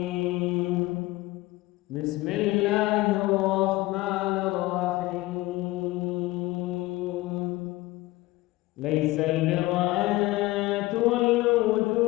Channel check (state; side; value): quieter; right; 19.0 dB